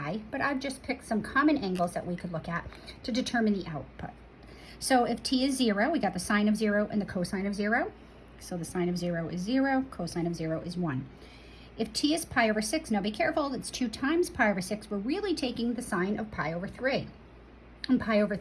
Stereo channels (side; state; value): both; identical; correlation 1.00